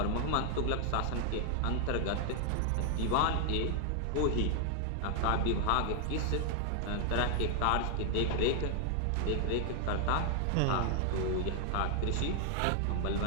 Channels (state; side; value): different; both; correlation 0.00